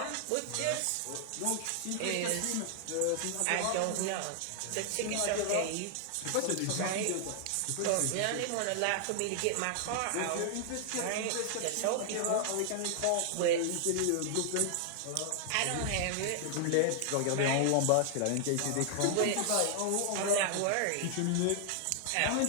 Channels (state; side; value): different; both; correlation 0.00